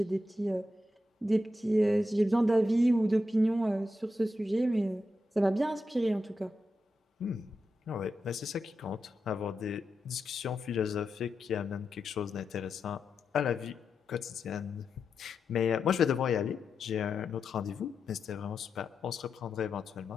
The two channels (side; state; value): both; normal; correlation 0.87